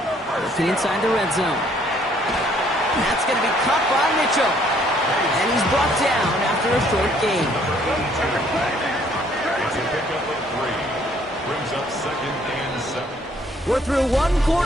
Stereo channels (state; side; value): normal; both; correlation 0.63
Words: Looking inside the red zone. That's going to be caught by Mitchell. And he's brought down after a short gain. Brings up second and 7. We're through one